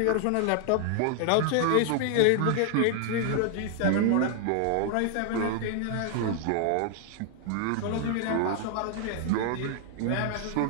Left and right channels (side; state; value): both; different; correlation 0.00